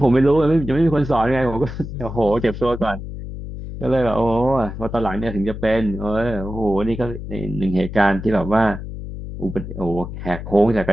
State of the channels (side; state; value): left; noise; hum, 9 dB below the sound